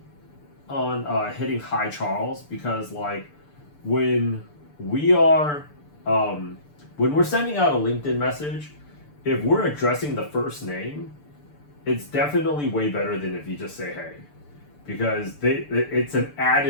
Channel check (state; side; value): late; right; 6.8 ms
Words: on hitting hi Charles, because like when we are when we're sending out a LinkedIn message, if we're addressing the first name, it's definitely way better than if you just say hey, because it's an